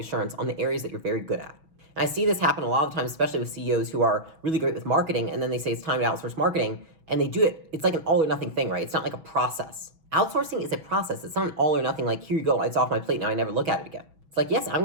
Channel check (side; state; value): left; late; 6.2 ms